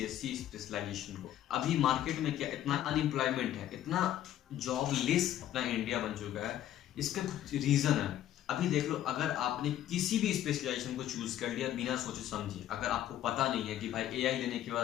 स्पेशलाइजेशन को। अभी मार्केट में क्या इतना अनएम्प्लॉयमेंट है, इतना जॉबलेस अपना इंडिया बन चुका है, इसका कुछ रीजन है। अभी देख लो, अगर आपने किसी भी स्पेशलाइजेशन को चूज कर लिया बिना सोचे समझे, अगर आपको पता नहीं है कि भाई एआई लेने के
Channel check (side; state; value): right; quieter; 12.1 dB